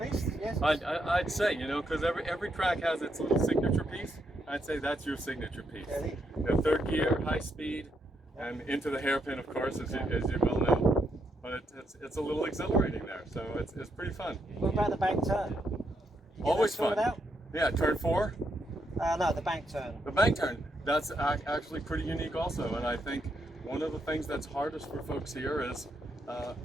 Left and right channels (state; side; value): normal; both; correlation 0.78